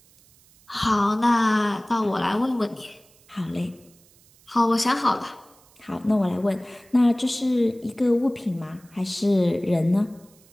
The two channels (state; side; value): noise; right; hiss, 29 dB below the sound